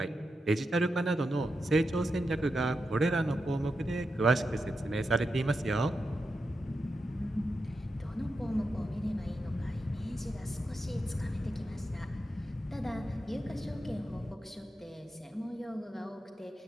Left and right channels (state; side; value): normal; both; correlation 0.88